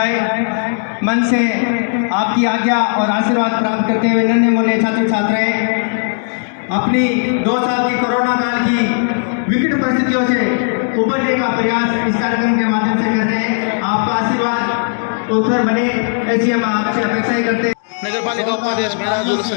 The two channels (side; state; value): right; silent; digital silence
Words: मन से आपकी आज्ञा और आशीर्वाद प्राप्त करते हुए नन्हे मुन्ने छात्र छात्राएं अपनी 2 साल की कोरोना काल की विकट परिस्थितियों से उबरने का प्रयास इस कार्यक्रम के माध्यम से कर रहे हैं। आपका आशीर्वाद उत्सव बने ऐसी हम आपसे अपेक्षा ही करते हैं। नगर पालिका उपाध्यक्ष मेहराजुल